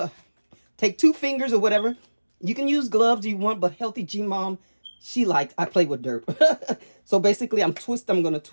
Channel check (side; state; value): both; inverted; correlation -1.00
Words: 2 fingers or whatever. You can use gloves if you want, but Healthy G Mom, I play with dirt. So basically, I'm going to